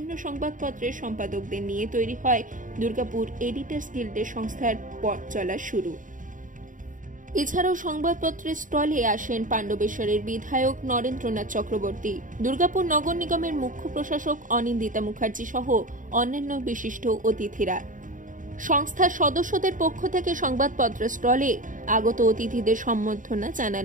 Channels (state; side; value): late; left; 0.38 ms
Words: সংবাদপত্রের সম্পাদকদের নিয়ে তৈরি হয় দুর্গাপুর এডিটর্স গিল্ডের সংস্থার পথ চলা শুরু। এছাড়াও সংবাদপত্রের স্টলে আসেন পাণ্ডবেশ্বরের বিধায়ক নরেন্দ্রনাথ চক্রবর্তী, দুর্গাপুর নগর নিগমের মুখ্য প্রশাসক অনিন্দিতা মুখার্জি সহ অন্যান্য বিশিষ্ট অতিথিরা। সংস্থার সদস্যদের পক্ষ থেকে সংবাদপত্রের স্টলে আগত অতিথিদের সম্বর্ধনা